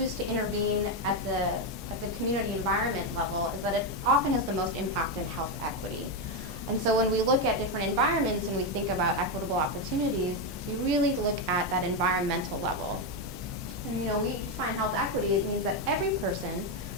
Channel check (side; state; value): both; normal; correlation 0.07